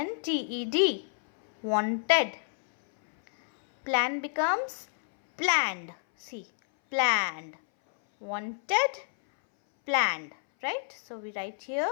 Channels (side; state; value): right; silent; 59 dB below the other